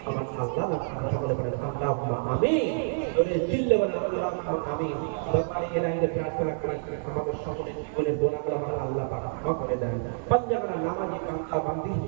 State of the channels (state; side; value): silent; left; 59 dB below the other